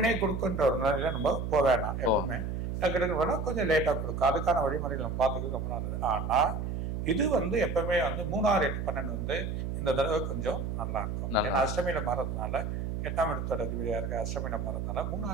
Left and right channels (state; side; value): noise; right; hum, 3 dB below the sound